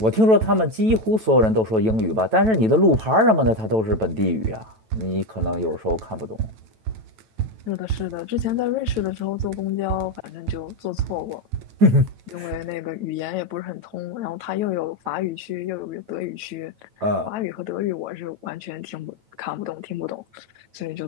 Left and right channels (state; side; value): late; left; 9.1 ms